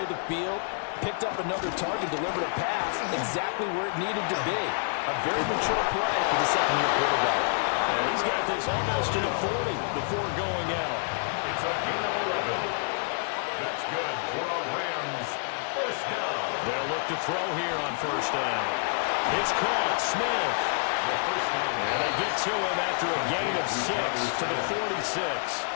the field, picked up another target, delivered a pass exactly where it needed to be. A very mature play for the 2nd-year quarterback. And he's got this almost to the 40 before going out. It's a gain of 11. That's good for the Rams. First down. They'll look to throw here on first down. It's caught. Smith. The first down. And they get to him after a gain of 6 to the 46.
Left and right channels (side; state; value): right; silent; 59 dB below the other